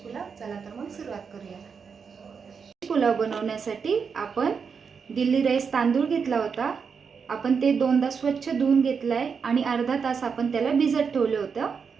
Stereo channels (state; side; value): quieter; left; 6.0 dB